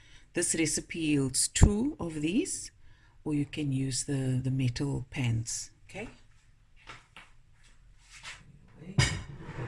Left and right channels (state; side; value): identical; both; correlation 1.00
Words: recipe yields two of these, or you can use the metal pans, okay?